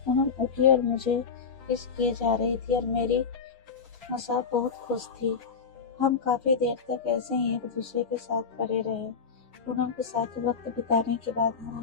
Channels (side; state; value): right; quieter; 5.6 dB